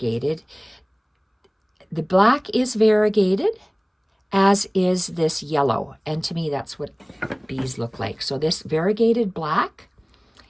The black is variegated, as is this yellow. And to me, that's what bees look like. So this variegated black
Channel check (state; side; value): identical; both; correlation 1.00